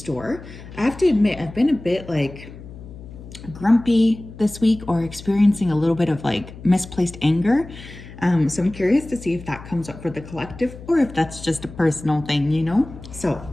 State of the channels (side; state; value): left; noise; hum, 16 dB below the sound